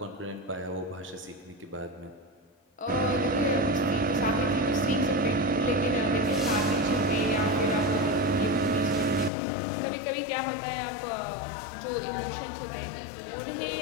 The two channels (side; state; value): right; drops out; at 9.3 s